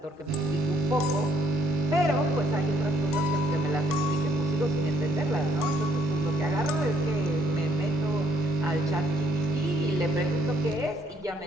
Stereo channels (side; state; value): both; normal; correlation 0.66